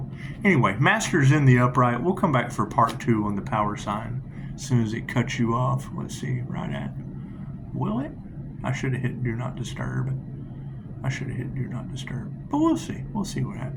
Anyway, Master's in the upright. We'll come back for part 2 on the power sign as soon as it cuts you off. Let's see, right at, will it? I should have hit do not disturb. But we'll see. We'll see what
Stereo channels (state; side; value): identical; both; correlation 1.00